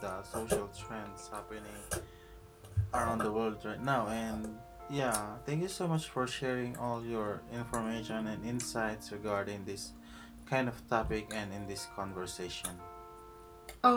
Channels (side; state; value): both; identical; correlation 1.00